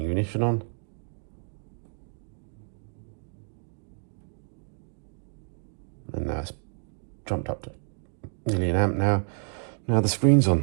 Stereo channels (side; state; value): left; silent; 58 dB below the other